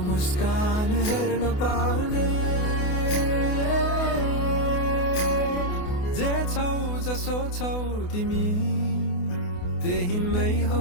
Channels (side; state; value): right; late; 28 ms